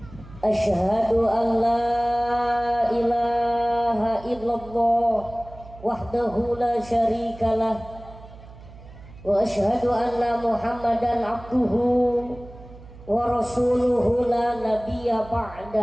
Ashhadu an la ilaha illallah wahdahu la syarikalah wa ashhadu anna Muhammadan abduhu wa rasuluhu la nabiyya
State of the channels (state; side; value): noise; right; hum, 19 dB below the sound